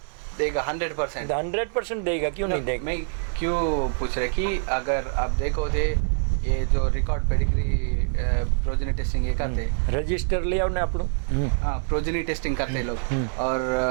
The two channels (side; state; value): left; silent; digital silence